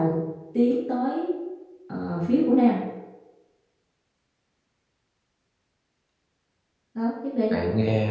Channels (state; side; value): identical; both; correlation 1.00